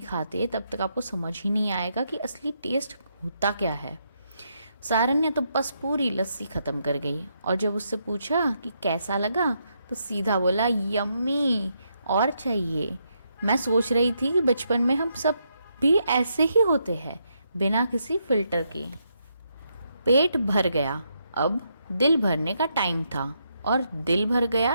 खाते तब तक आपको समझ ही नहीं आएगा कि असली टेस्ट होता क्या है। सारन ने तो बस पूरी लस्सी खत्म कर गई और जब उससे पूछा कि कैसा लगा तो सीधा बोला यम्मी, और चाहिए। मैं सोच रही थी कि बचपन में हम सब भी ऐसे ही होते हैं, बिना किसी फिल्टर के। पेट भर गया, अब दिल भरने का टाइम था। और दिल भर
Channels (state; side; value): inverted; both; correlation -0.79